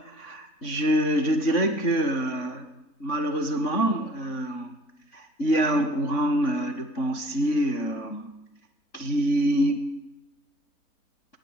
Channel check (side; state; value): right; late; 3.6 ms